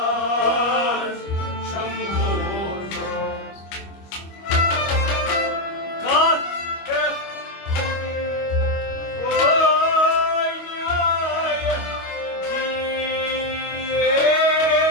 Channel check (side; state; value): right; late; 25 ms